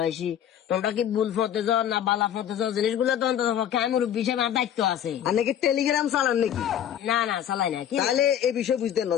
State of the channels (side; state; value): right; quieter; 10.0 dB